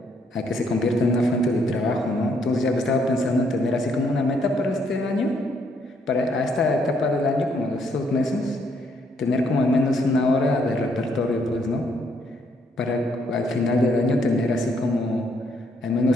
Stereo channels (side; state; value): both; normal; correlation 0.71